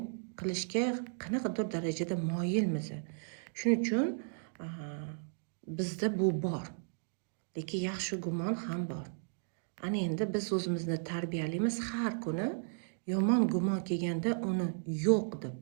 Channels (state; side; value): silent; left; digital silence